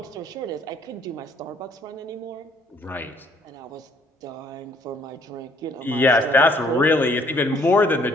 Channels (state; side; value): normal; both; correlation 0.63